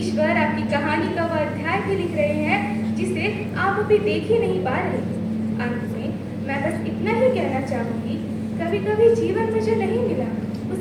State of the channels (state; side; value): identical; both; correlation 1.00